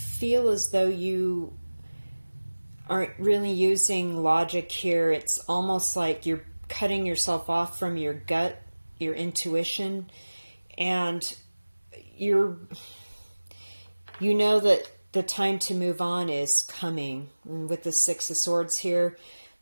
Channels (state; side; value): inverted; both; correlation -1.00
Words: as though you aren't really using logic here. It's almost like you're cutting yourself off from your gut, your intuition, and you know that the time to move on is coming. And with the Six of Swords here,